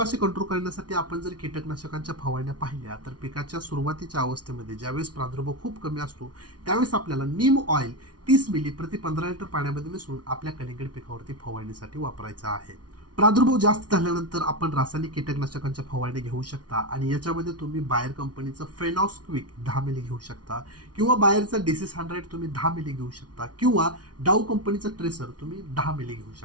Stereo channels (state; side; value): late; left; 0.69 ms